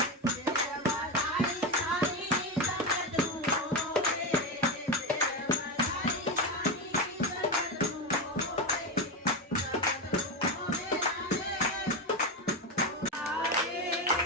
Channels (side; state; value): both; normal; correlation 0.14